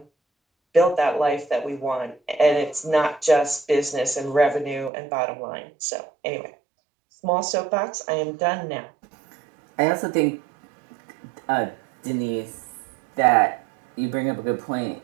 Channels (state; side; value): drops out; left; at 4.9 s